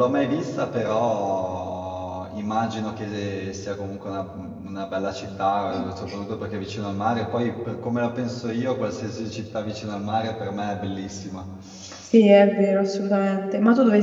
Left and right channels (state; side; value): identical; both; correlation 1.00